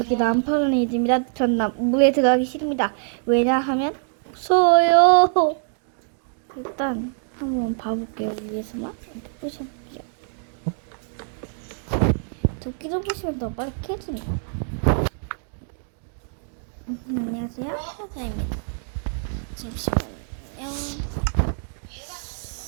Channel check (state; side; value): silent; left; 59 dB below the other